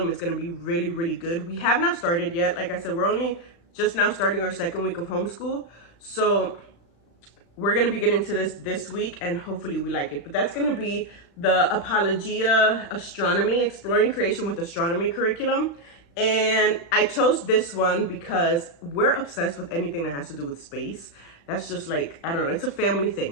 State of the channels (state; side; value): late; right; 35 ms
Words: is going to be really, really good. We have not started yet. Like I said, we're only just now starting our second week of homeschool. So we're going to be getting to this week, and hopefully we like it. But that's going to be the Apologia Astronomy, Exploring Creation with Astronomy curriculum. And I chose this one because we're obsessed with anything that has to do with space. That's just like, I don't know, it's a family